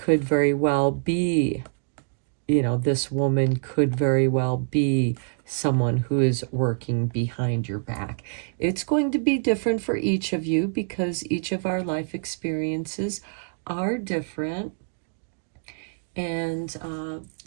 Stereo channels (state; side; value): silent; left; digital silence